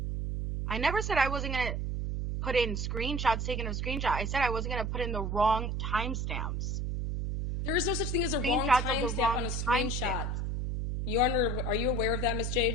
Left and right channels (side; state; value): right; noise; hum, 1 dB below the sound